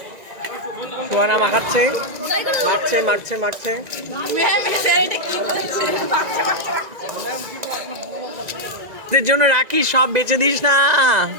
সুহানা মাখাচ্ছে, মাখছে মাখছে মাখছে। স্যার এটা কি বলছে? এদের জন্য রাখি, সব বেচে দিস না।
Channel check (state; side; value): late; left; 1.9 ms